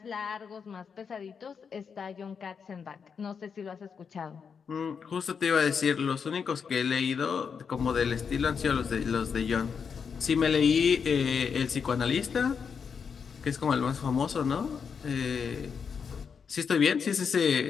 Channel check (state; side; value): quieter; right; 6.3 dB